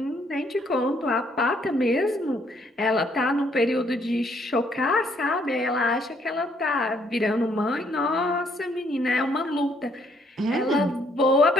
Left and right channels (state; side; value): normal; both; correlation 0.68